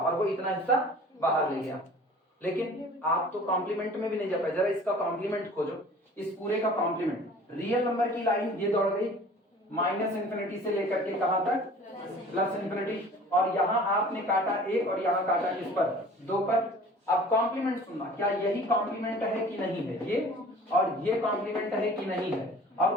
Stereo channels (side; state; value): both; normal; correlation 0.46